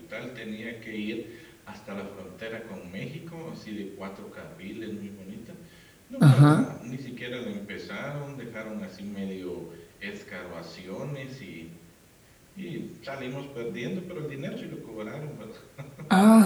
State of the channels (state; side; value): identical; both; correlation 1.00